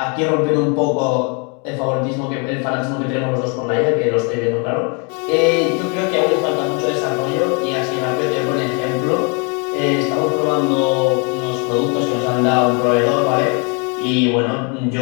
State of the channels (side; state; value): right; quieter; 35.0 dB